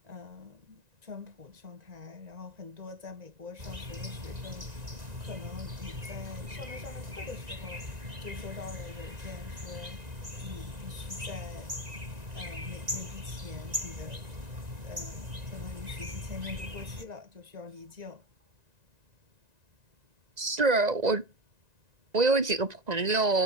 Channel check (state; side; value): late; left; 1.9 ms